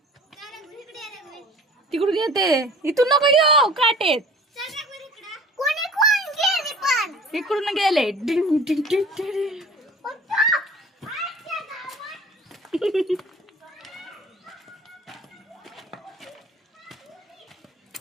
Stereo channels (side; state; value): both; normal; correlation 0.46